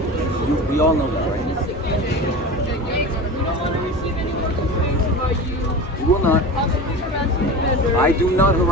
We all know that, right? We don't want to receive any more complaints about you. We will not. Possibly harassing the vendors. I do not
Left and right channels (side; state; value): both; normal; correlation 0.30